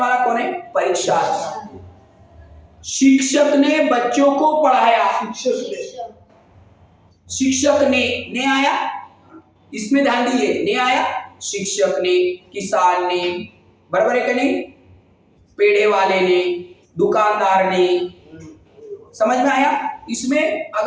कौन है? परीक्षार्थी। शिक्षक ने बच्चों को पढ़ाया। शिक्षक ने आया, इसमें ध्यान दीजिए, ने आया। शिक्षक ने, किसान ने, बराबर है कि नहीं? पेड़े वाले ने, दुकानदार ने। समझ में आया? इसमें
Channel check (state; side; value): identical; both; correlation 1.00